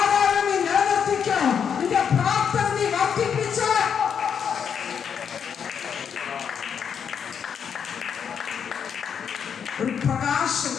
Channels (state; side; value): quieter; right; 7.4 dB